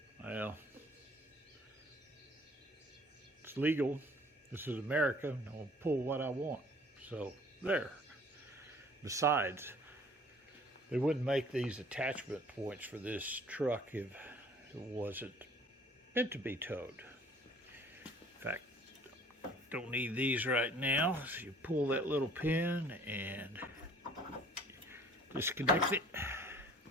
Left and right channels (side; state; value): both; normal; correlation 0.53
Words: Well, it's legal. This is America. I'll pull what I want. So there. Besides, they wouldn't make these attachment points for this truck if it wasn't meant to be towed. In fact, don't need these right now. So you pull that little pin and disconnect it.